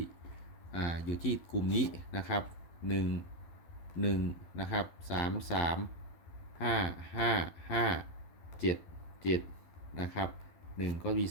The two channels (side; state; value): right; late; 12 ms